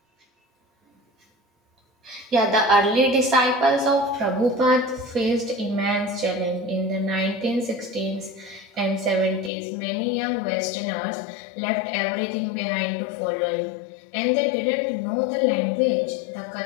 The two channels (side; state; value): right; drops out; at 9.5 s